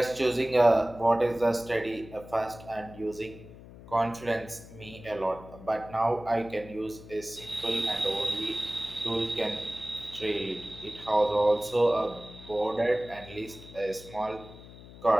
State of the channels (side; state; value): left; noise; hum, 17 dB below the sound